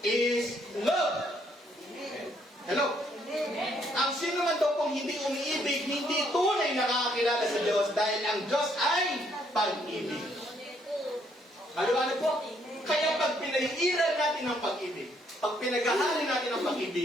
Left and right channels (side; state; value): both; normal; correlation 0.70